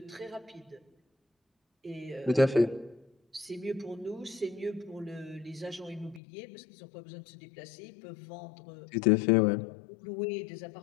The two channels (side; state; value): right; drops out; at 6.2 s